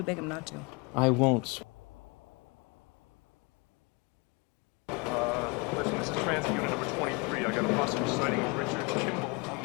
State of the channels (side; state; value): right; quieter; 29.3 dB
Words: beg him not to. I won't. Listen, this is transit unit number 23. I got a possible sighting of Richard Kimball on